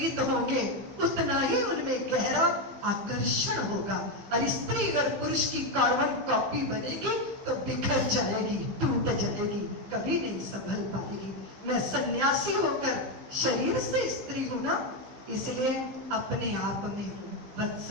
होंगे उतना ही उनमें गहरा आकर्षण होगा। और स्त्री अगर पुरुष की कार्बन कॉपी बनेगी तो बिखर जाएगी, टूट जाएगी, कभी नहीं संभल पाएगी। मैं सन्यासी होकर शरीर से स्त्री हूं ना, इसलिए अपने आप में हूँ,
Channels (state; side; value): late; left; 15 ms